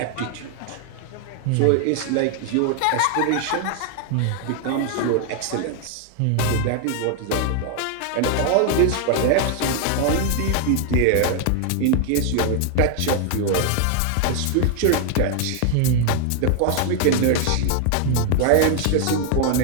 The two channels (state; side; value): different; both; correlation 0.00